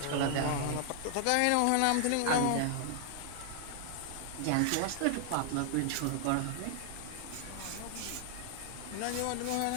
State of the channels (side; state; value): both; different; correlation -0.01